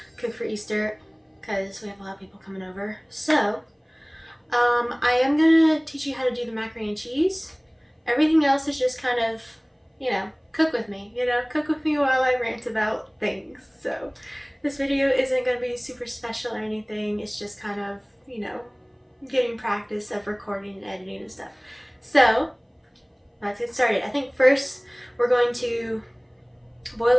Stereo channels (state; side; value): identical; both; correlation 1.00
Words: cook for Easter because we have a lot of people coming over. So I am gonna teach you how to do the macaroni and cheese. Everything else is just kind of, cook with me. Cook with me while I rant about things. So this video isn't gonna be super special or anything. It's just kind of, getting practice of recording and editing and stuff. So let's get started. I think first we're going to boil